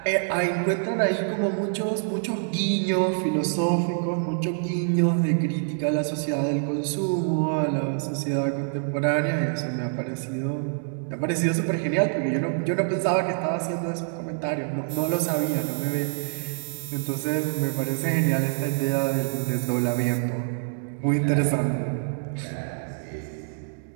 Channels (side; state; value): left; silent; digital silence